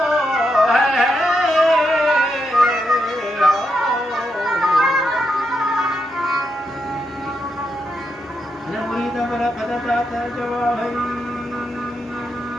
Ada murida pada pada tata jawab.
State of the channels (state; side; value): normal; both; correlation 0.83